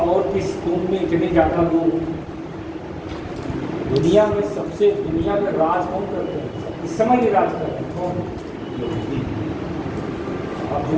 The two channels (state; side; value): identical; both; correlation 1.00